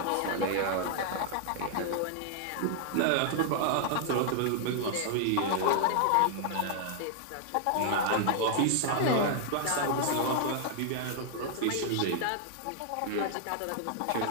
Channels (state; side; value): different; both; correlation -0.01